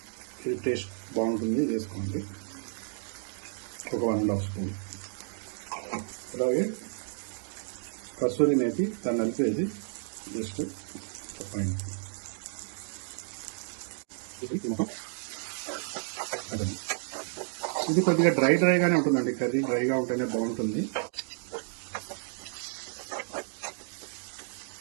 ఇది టేస్ట్ బాగుంటుంది, వేసుకోండి. ఒక 1.5 స్పూన్. అలాగే కసూరి మేతి, దాన్ని నలిపేది జస్ట్ పైన. ఇది కొద్దిగా డ్రైగానే ఉంటుందండి. కర్రీ డ్రైగా ఉంటేనే బాగుంటుంది.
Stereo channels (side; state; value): left; silent; digital silence